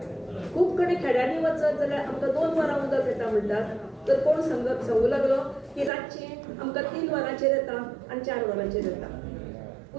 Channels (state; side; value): drops out; left; at 5.9 s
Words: खूब कडेन खेड्यांनी वचत जाल्यार आमकां 2 वरां उदक येता म्हणटात, तर कोण सांगू लागलो की रातची आमकां 3 वरांचेर येता आनी 4 वरांचेर येता.